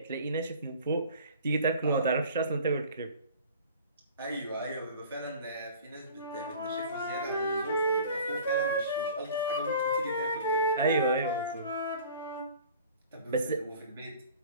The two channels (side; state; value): both; inverted; correlation -0.45